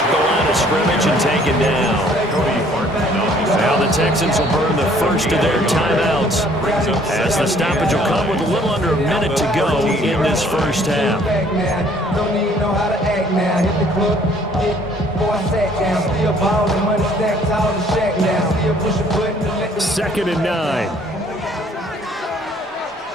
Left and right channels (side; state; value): both; normal; correlation 0.59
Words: the line of scrimmage and taken down. Now the Texans will burn the first of their timeouts as the stoppage will come with a little under a minute to go in this first half. 2nd and 9.